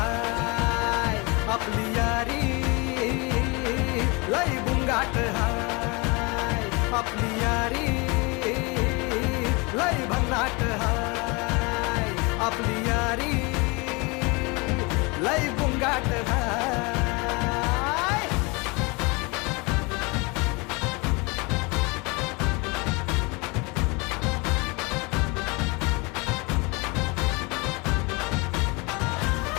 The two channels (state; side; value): quieter; right; 27.8 dB